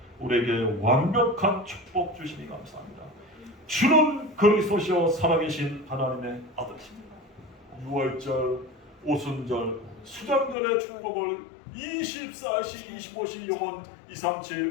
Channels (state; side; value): drops out; right; at 10.6 s